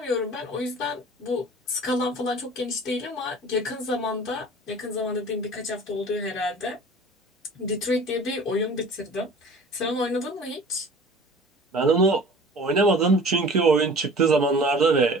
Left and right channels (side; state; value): both; normal; correlation 0.44